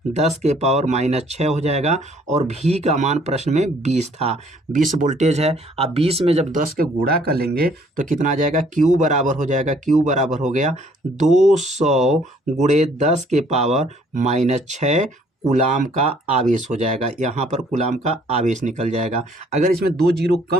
10 के पावर -6 हो जाएगा, और V का मान प्रश्न में 20 था, 20 वोल्टेज है। अब 20 में जब 10 के गुणा कर लेंगे तो कितना आ जाएगा, Q बराबर हो जाएगा, Q बराबर हो गया 200 × 10 के पावर -6 कूलाम का आवेश हो जाएगा। यहाँ पर कूलाम का आवेश निकल जाएगा। अगर इसमें 2 जीरो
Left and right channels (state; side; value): normal; both; correlation 0.61